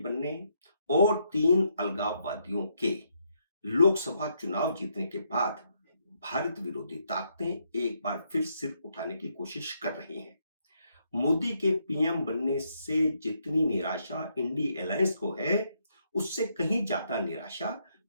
और 3 अलगाववादियों के लोकसभा चुनाव जीतने के बाद भारत विरोधी ताकतें एक बार फिर सिर उठाने की कोशिश कर रही हैं। मोदी के पीएम बनने से जितनी निराशा इंडी अलायंस को है, उससे कहीं ज्यादा निराशा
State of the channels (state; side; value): inverted; both; correlation -0.76